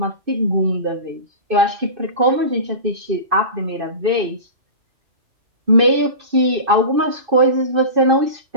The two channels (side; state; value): left; late; 2.6 ms